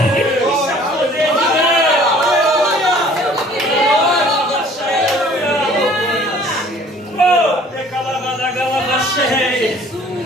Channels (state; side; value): normal; both; correlation 0.53